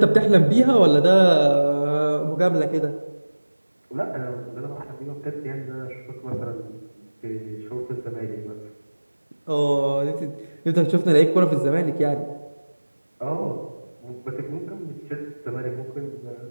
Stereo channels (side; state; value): both; inverted; correlation -1.00